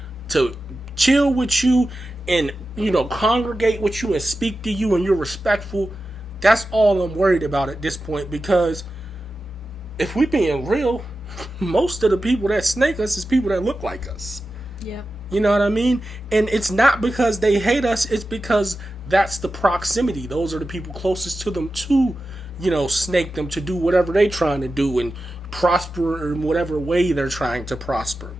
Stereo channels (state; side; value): normal; both; correlation 0.93